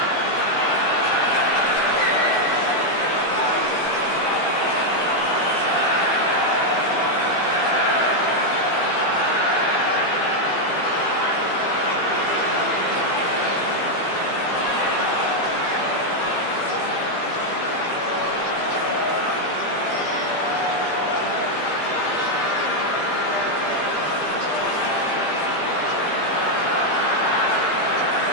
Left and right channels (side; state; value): right; late; 15 ms